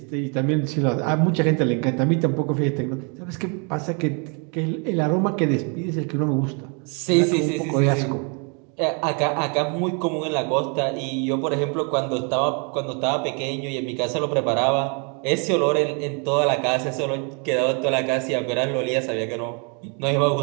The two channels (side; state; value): left; quieter; 36.2 dB